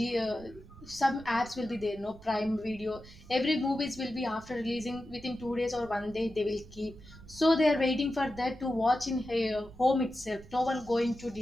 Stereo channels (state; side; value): noise; right; rumble, 19 dB below the sound